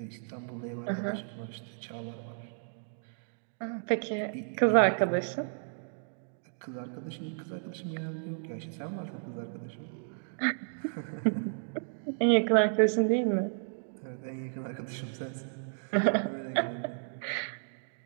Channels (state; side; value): silent; left; digital silence